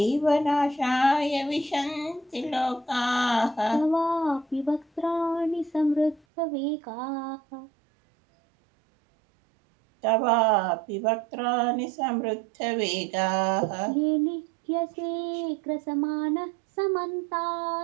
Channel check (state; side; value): drops out; left; at 6.2 s